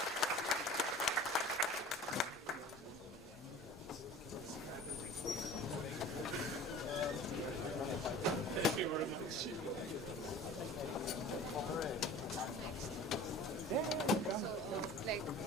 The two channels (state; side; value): normal; both; correlation 0.41